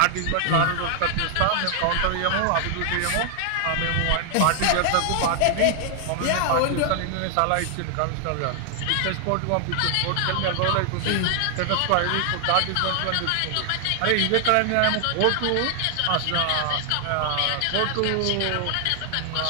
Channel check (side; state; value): both; different; correlation 0.00